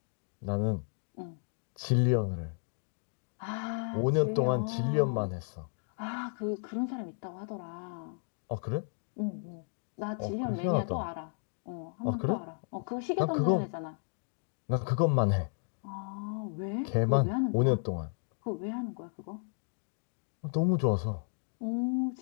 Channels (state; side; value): silent; right; 56 dB below the other